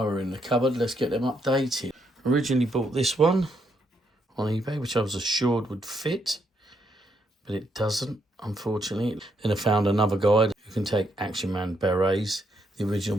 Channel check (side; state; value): both; normal; correlation 0.76